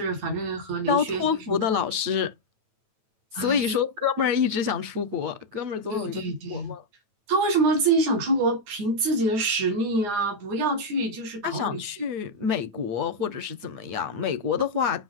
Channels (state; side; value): late; left; 9.1 ms